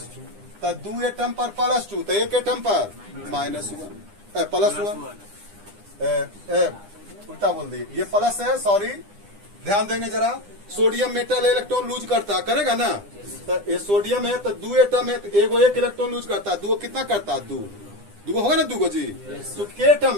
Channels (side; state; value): left; late; 9.9 ms